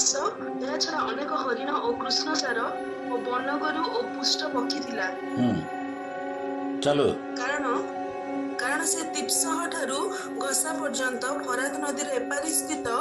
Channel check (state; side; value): identical; both; correlation 1.00